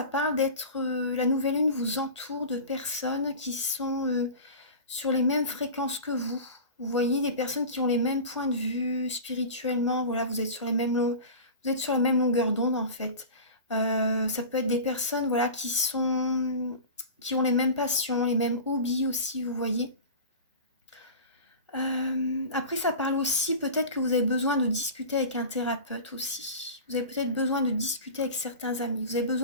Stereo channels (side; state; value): both; inverted; correlation -0.33